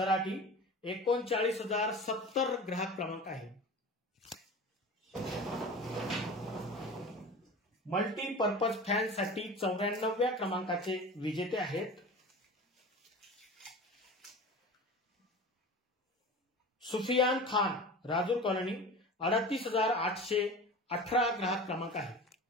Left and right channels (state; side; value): normal; both; correlation 0.35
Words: 39,070 ग्राहक क्रमांक आहे। मल्टीपर्पज फॅनसाठी 94व्या क्रमांकाचे विजेते आहेत सुफियान खान, राजूर कॉलनी, 38,818 ग्राहक क्रमांक आहे।